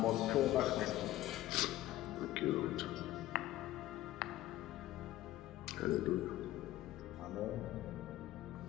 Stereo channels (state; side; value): quieter; right; 15.0 dB